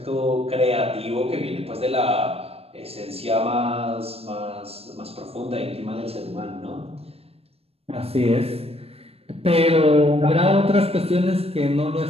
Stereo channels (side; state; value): left; late; 0.29 ms